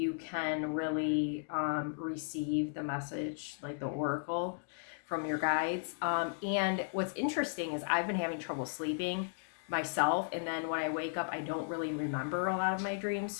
can really receive the message, like the oracle from your guides. And what's interesting is I've been having trouble sleeping myself, and then when I wake up I don't really remember a lot of my dreams.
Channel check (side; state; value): right; silent; digital silence